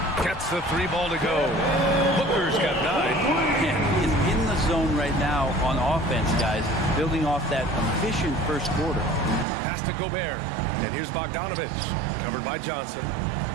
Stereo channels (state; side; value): drops out; left; at 9.5 s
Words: gets the 3 ball to go. Booker's got 9. Yeah, he's in the zone right now on offense, guys, building off that efficient first quarter. Pass to Gobert, and here's Bogdanovich, covered by Johnson.